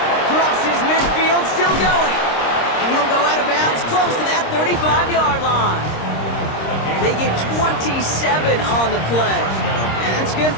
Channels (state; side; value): late; right; 26 ms